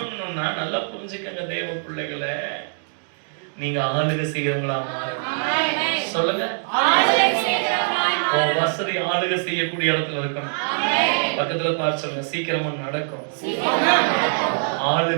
நல்லா புரிஞ்சுக்கங்க தேவ பிள்ளைகளே, நீங்க ஆளுகை செய்யறவங்களா மாறணும். சொல்லுங்க, ஆளுகை செய்யறவங்களா. வசதி ஆளுகை செய்யக்கூடிய இடத்துல இருக்கணும். பக்கத்துல பார்த்து சொல்லுங்க, சீக்கிரமா நடக்கும்.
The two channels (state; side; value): silent; left; 63 dB below the other